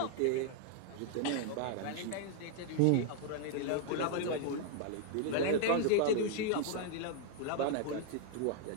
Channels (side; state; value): both; different; correlation -0.01